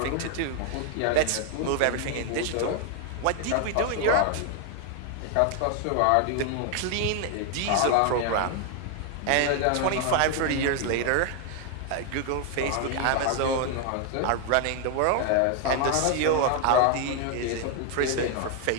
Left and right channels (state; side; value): different; both; correlation 0.00